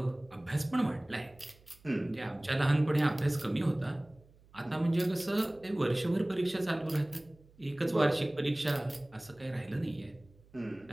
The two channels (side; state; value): right; noise; hum, 27 dB below the sound